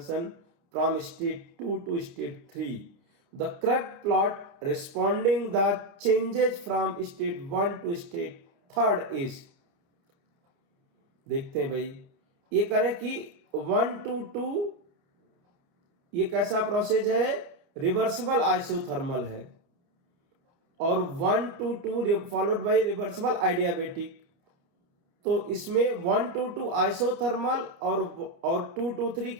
from state 2 to state 3. The correct plot responding the changes from state 1 to state 3rd is, देखते हैं भाई ये करें कि 1 to 2 ये कैसा process है, reversible isothermal है, और 1 to 2 फॉलोड बाय रिवर्सिबल आइडियाबेटिक। तो इसमें 1 to 2 आइसोथर्मल और 2 to 3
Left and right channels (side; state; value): left; late; 30 ms